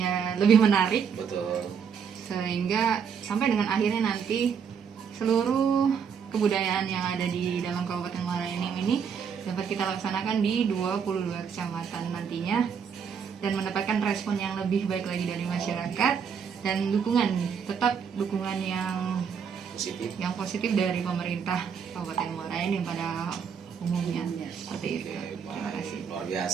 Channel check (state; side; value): quieter; left; 6.9 dB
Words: lebih menarik, Betul. sehingga sampai dengan akhirnya nanti seluruh kebudayaan yang ada di dalam Kabupaten Muara Enim ini dapat kita laksanakan di 22 kecamatan nantinya dan mendapatkan respon yang lebih baik lagi dari masyarakat dan tetap dukungan yang positif dari pemerintah Kabupaten Muara Enim pada umumnya seperti itu. Terima kasih. Luar